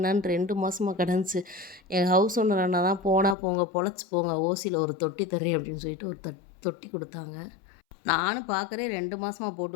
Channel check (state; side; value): drops out; right; at 3.4 s